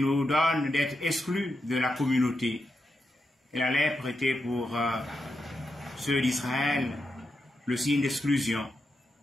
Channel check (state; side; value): normal; both; correlation 0.86